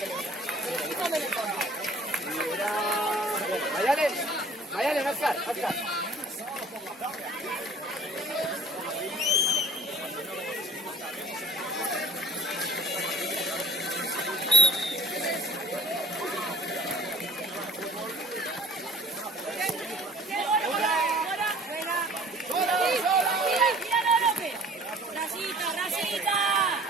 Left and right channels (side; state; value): both; normal; correlation 0.50